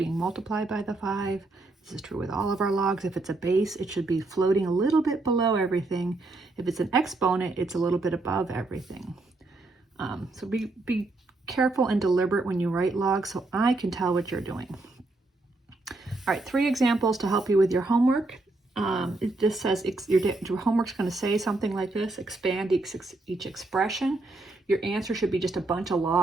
multiplied by the 5. This is true with all of our logs. If it's a base, it should be floating a little bit below everything. If it's an exponent, it's a little bit above everything. So be careful and deliberate when you write logs so I can tell what you're doing. All right, 3 examples to help you with your homework. It just says your homework's going to say something like this: expand each expression. Your answer should be just a bunch of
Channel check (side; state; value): left; quieter; 3.1 dB